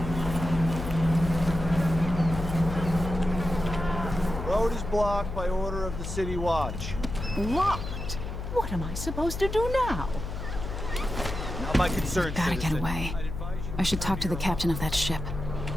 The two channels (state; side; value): noise; left; hum, 6 dB below the sound